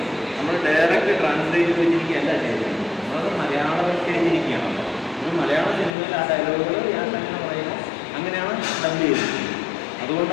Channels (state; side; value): drops out; right; at 5.9 s